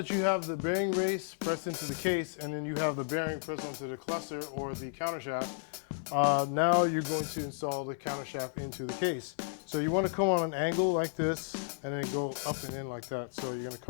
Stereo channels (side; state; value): right; silent; digital silence